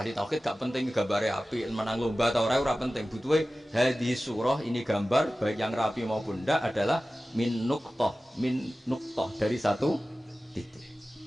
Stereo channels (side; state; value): both; normal; correlation 0.96